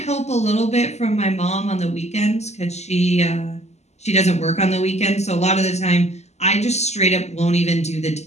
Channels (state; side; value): late; right; 0.32 ms